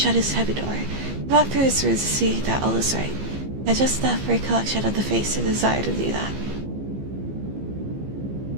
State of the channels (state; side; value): late; left; 15 ms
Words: his heavy door, he walked through his rooms to see that all was right. He had just enough recollection of the face to desire to do that.